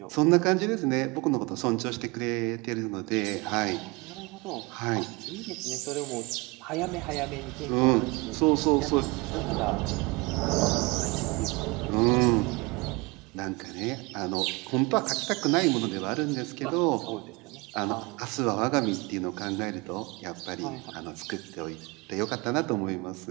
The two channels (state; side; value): quieter; left; 26.0 dB